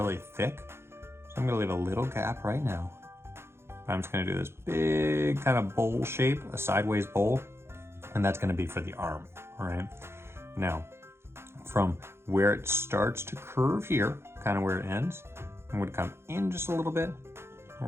thick. So I'm gonna leave a little gap right now. I'm just gonna do this big kind of bowl shape, a sideways bowl, and that's gonna be for the arm, all right? Now, from where it starts to curve here, kind of where it ends, I'm gonna come in just a little bit, and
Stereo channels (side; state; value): left; late; 0.12 ms